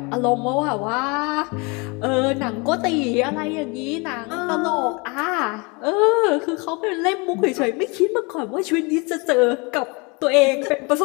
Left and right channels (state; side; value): quieter; right; 29.1 dB